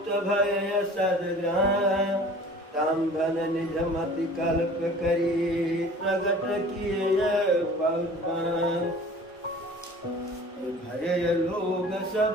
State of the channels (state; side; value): normal; both; correlation 0.45